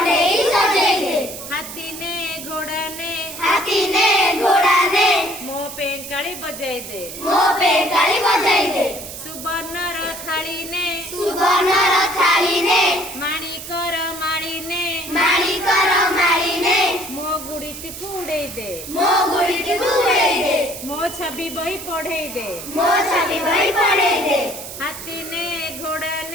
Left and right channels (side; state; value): right; noise; hiss, 11 dB below the sound